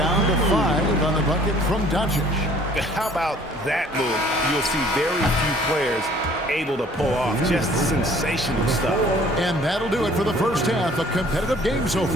to 5 on the bucket from Doncic. How about that move? You'll see very few players able to pull off. Just sensational stuff. And that'll do it for the first half. A competitive game so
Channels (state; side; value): normal; both; correlation 0.55